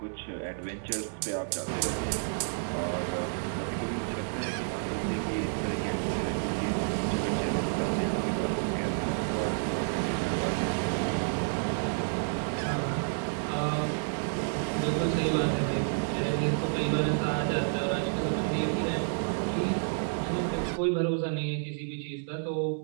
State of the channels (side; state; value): left; silent; digital silence